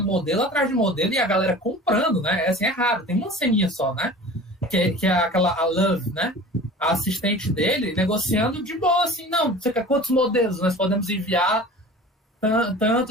modelo atrás de modelo e a galera comprando, né? Assim, é raro, tem uma ceninha só, né? Que é a Love, né? A assistente dele negociando de boa, assim, não, você quer quantos modelos nós podemos enviar?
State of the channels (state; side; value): normal; both; correlation 0.40